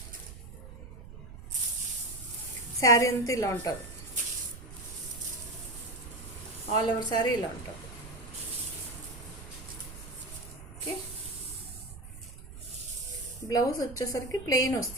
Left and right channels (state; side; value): noise; right; rumble, 13 dB below the sound